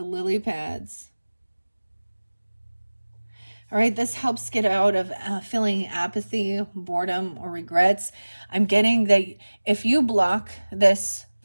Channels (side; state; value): both; inverted; correlation -1.00